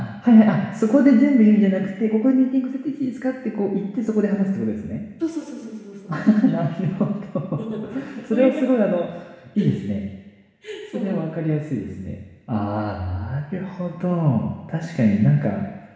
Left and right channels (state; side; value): identical; both; correlation 1.00